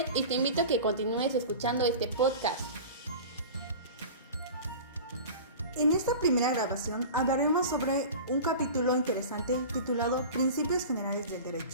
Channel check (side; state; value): both; inverted; correlation -0.35